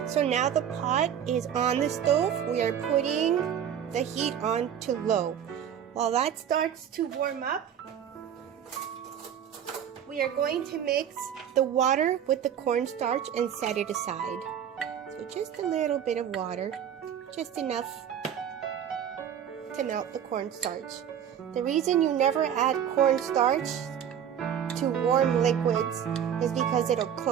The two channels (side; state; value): left; quieter; 9.1 dB